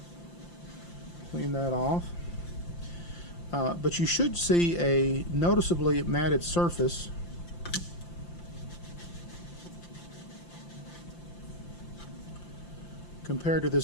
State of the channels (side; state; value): right; late; 5.8 ms